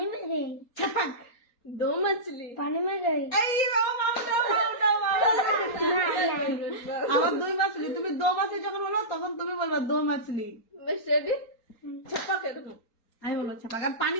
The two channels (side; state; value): right; late; 4.3 ms